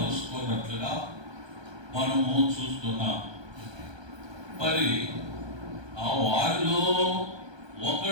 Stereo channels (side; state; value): left; late; 1.2 ms